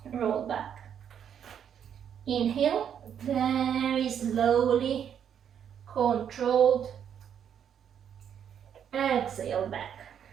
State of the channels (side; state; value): left; quieter; 8.6 dB